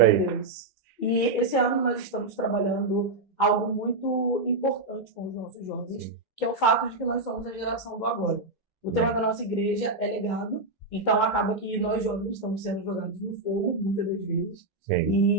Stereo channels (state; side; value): quieter; left; 3.1 dB